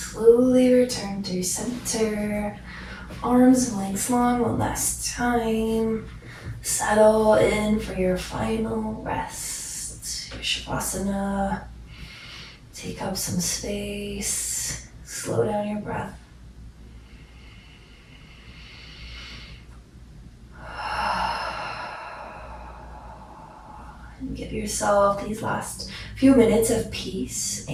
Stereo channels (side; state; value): both; identical; correlation 1.00